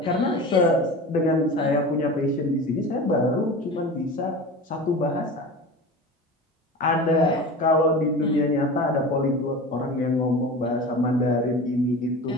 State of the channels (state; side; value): normal; both; correlation 0.32